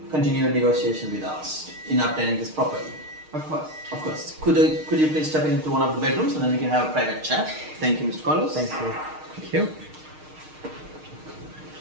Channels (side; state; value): left; late; 6.5 ms